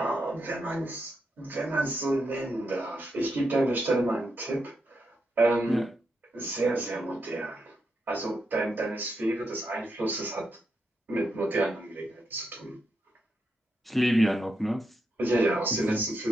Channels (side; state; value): both; normal; correlation 0.83